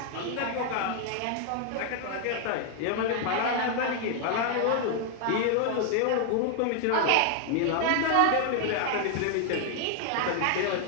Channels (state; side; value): different; both; correlation 0.00